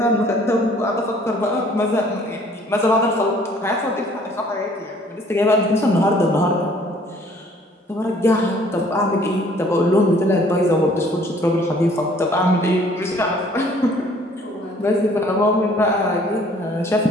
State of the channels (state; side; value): normal; both; correlation 0.57